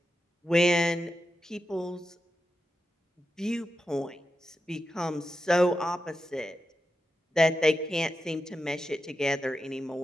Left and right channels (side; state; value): both; normal; correlation 0.89